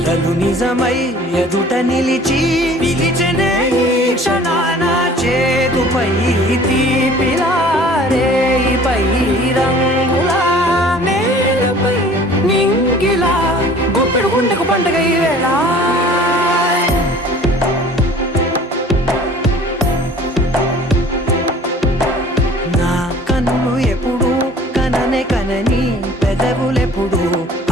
నిజమై ఎదుట నిలిచి పిలిచెనే ఈ క్షణాన చేతుపై తీపిలారే పై రంగులా నేలపై నింగిలా గుప్పెడు గుండెకు పండుగ ఈ వేళ. నా కన్ను ఎప్పుడు కననే కనని పెదవులెప్పుడు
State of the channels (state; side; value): normal; both; correlation 0.49